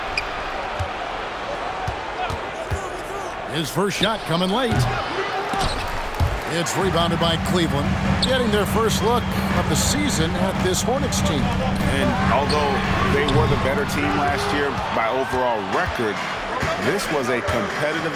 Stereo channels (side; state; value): both; identical; correlation 1.00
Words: His first shot coming late. It's rebounded by Cleveland, getting their first look of the season at this Hornets team. And although they were the better team last year by overall record, this was a competitive